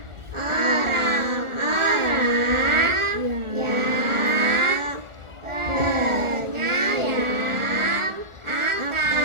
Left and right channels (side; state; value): left; late; 1.4 ms